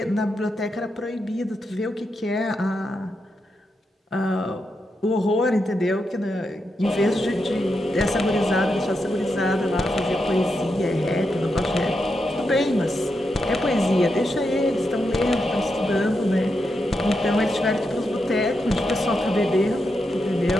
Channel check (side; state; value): both; normal; correlation 0.85